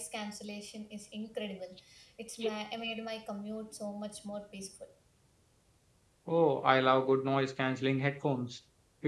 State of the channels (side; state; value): both; identical; correlation 1.00